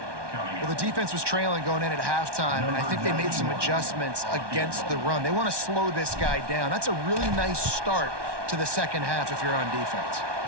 Well, the defense was trailing going in at halftime, and I think they made some adjustments against the run. They want to slow this guy down. That's a really nice start to the second half if you're on defense.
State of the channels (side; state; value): left; late; 1.2 ms